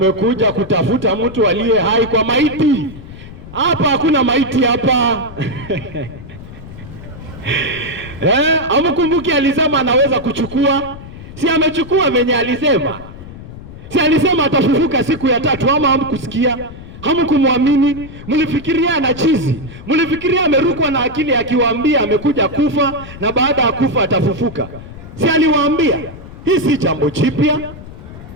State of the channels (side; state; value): left; noise; rumble, 15 dB below the sound